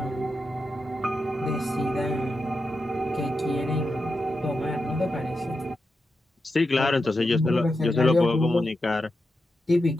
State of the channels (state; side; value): normal; both; correlation 0.88